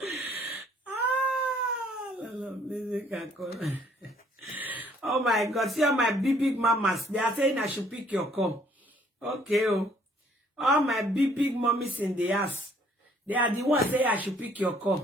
Oh my God, see all my big mamas. They are saying I should pick your call. Okay, oh. All my big mommies in the house. They are the ones saying I should pick your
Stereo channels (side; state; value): both; normal; correlation 0.62